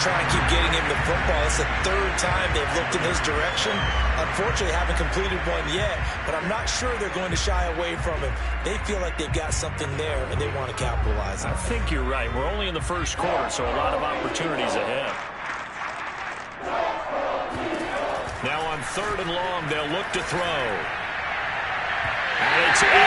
try and keep getting him the football. It's the third time they've looked in his direction. Unfortunately, haven't completed one yet, but I'm not sure they're going to shy away from him. They feel like they've got something there, and they want to capitalize on it. I think you're right. We're only in the first quarter, so a lot of opportunities ahead. Now on third and long, they'll look to throw. And it's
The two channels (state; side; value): identical; both; correlation 1.00